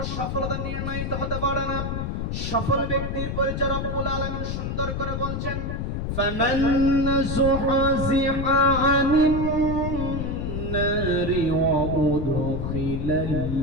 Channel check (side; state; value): left; noise; rumble, 2 dB below the sound